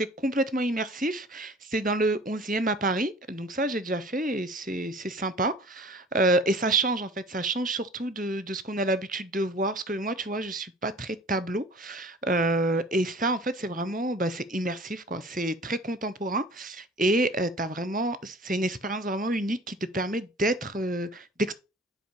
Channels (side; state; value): both; normal; correlation 0.45